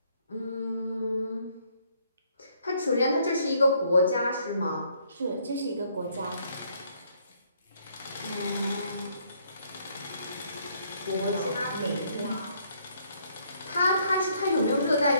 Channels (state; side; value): inverted; both; correlation -0.67